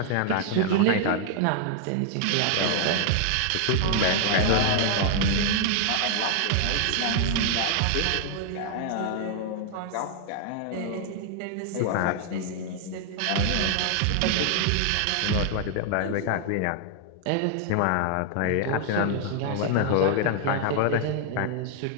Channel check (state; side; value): different; both; correlation 0.00